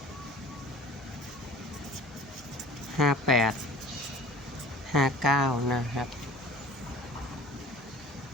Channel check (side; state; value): both; normal; correlation 0.45